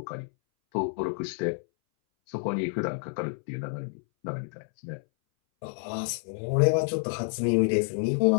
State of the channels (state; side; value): silent; right; 59 dB below the other